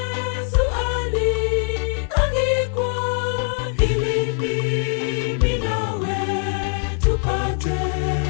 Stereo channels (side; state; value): right; silent; 58 dB below the other